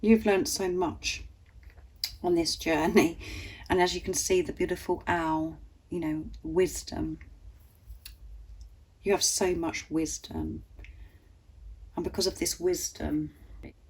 learnt so much on this journey, and as you can see, the beautiful owl, you know, wisdom. You have so much wisdom, and because of this wisdom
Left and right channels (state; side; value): identical; both; correlation 1.00